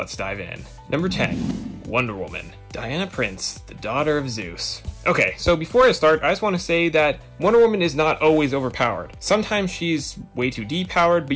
dive in. Number 10, Wonder Woman. Diana Prince, the daughter of Zeus. Okay, so before I start, I just want to say that Wonder Woman is not always overpowered. Sometimes she's way too depowered, but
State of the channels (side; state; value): both; identical; correlation 1.00